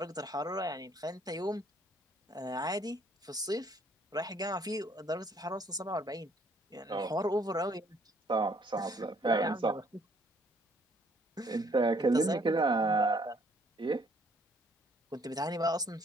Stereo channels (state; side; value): normal; both; correlation 0.64